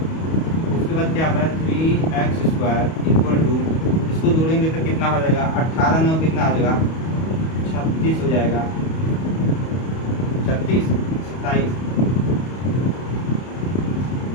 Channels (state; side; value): late; right; 31 ms